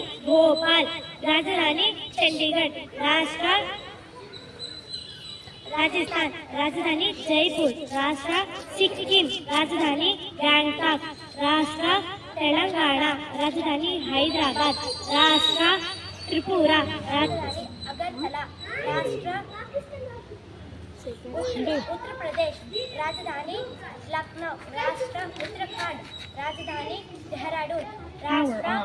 ಭೋಪಾಲ್. ರಾಜಧಾನಿ ಚಂಡೀಗಢ. ರಾಷ್ಟ್ರ ರಾಜಸ್ಥಾನ್, ರಾಜಧಾನಿ ಜೈಪುರ್. ರಾಷ್ಟ್ರ ಸಿಕ್ಕಿಂ, ರಾಜಧಾನಿ ಗ್ಯಾಂಗ್ಟಾಕ್. ರಾಷ್ಟ್ರ ತೆಲಂಗಾಣ, ರಾಜಧಾನಿ ಹೈದರಾಬಾದ್. ರಾಷ್ಟ್ರ ತ್ರಿಪುರಾ, ರಾಜಧಾನಿ ಅಗರ್ತಲಾ. ರಾಷ್ಟ್ರ ಉತ್ತರ ಪ್ರದೇಶ್, ರಾಜಧಾನಿ ಲಕ್ನೋ. ರಾಷ್ಟ್ರ ಉತ್ತರಾಖಂಡ್, ರಾಜಧಾನಿ ಡೆಹ್ರಾಡೂನ್. ರಾಷ್ಟ್ರ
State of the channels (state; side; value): identical; both; correlation 1.00